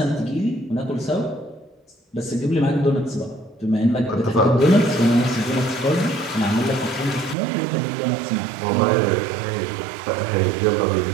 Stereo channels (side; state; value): left; drops out; at 7.4 s